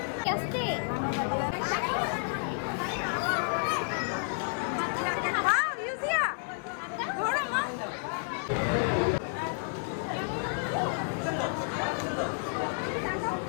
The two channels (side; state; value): right; silent; 57 dB below the other